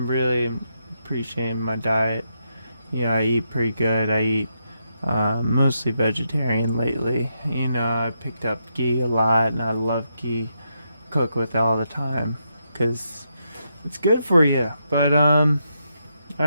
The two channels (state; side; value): inverted; both; correlation -0.82